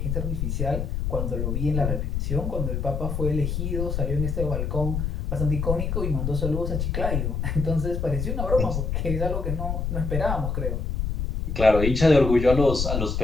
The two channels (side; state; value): left; noise; rumble, 1 dB below the sound